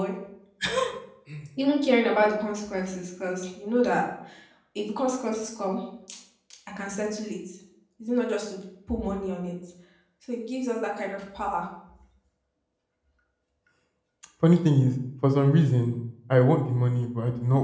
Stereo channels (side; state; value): both; identical; correlation 1.00